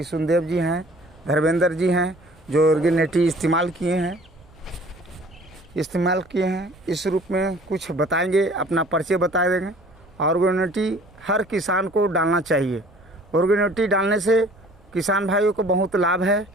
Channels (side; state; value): right; noise; rumble, 26 dB below the sound